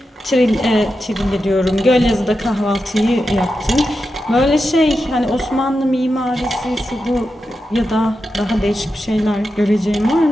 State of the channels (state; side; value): normal; both; correlation 0.89